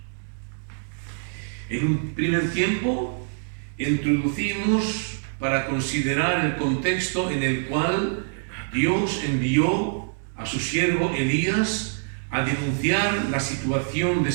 En un primer tiempo introducimos para considerar el contexto en el cual Dios envió a su siervo Elías a denunciar la situación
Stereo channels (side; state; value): left; silent; digital silence